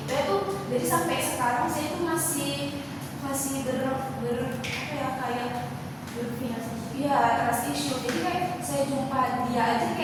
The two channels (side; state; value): both; identical; correlation 1.00